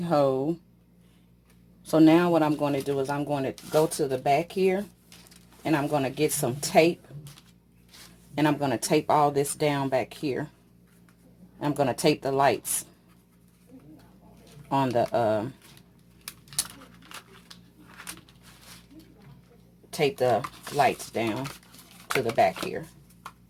So now what I'm going to do is I'm going to go to the back here, and I'm going to get some tape, and I'm going to tape all this down back here. I'm going to tape the lights on the tape the lights down to the back here.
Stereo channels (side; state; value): both; identical; correlation 1.00